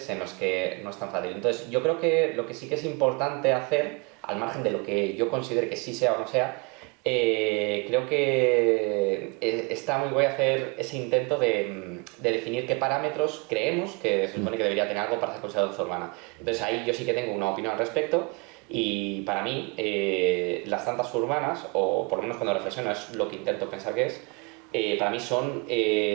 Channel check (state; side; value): quieter; left; 30.9 dB